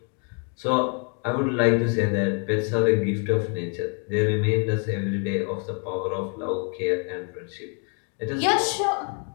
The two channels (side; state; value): right; quieter; 38.3 dB